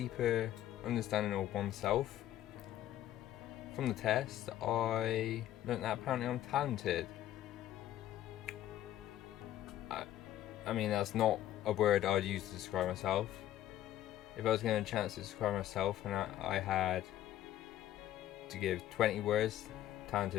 understanding of oneself. From the test, I learned that apparently I'm talented. I mean, that's not a word I'd use to describe myself. If I was given a chance to describe myself and I had to give 20 words,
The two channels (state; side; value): quieter; right; 12.8 dB